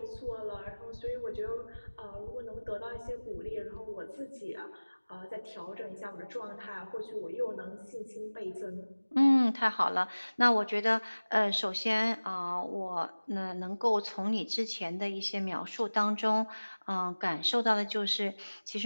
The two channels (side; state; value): both; inverted; correlation -1.00